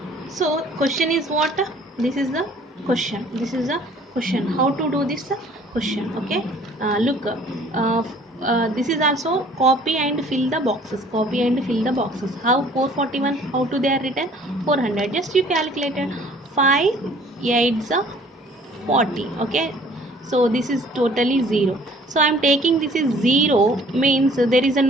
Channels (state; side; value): normal; both; correlation 0.54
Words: So question is what? This is the question. This is the question. How to do this question? Okay. Look. this is also copy and fill the boxes, copy and fill the boxes. How 441, how to they are written? 400, just you calculated. 5 8s are 40. Okay, so this is totally 0. So I am taking this is 0, means there is a